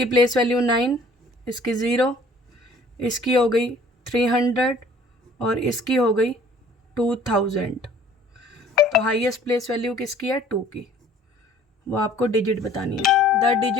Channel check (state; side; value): normal; both; correlation 0.53